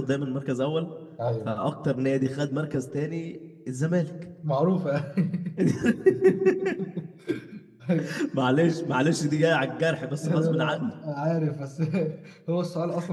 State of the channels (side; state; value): both; identical; correlation 1.00